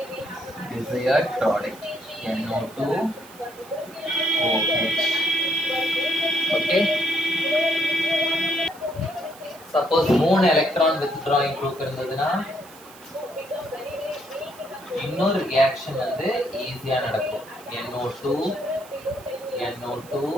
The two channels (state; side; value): noise; right; hiss, 21 dB below the sound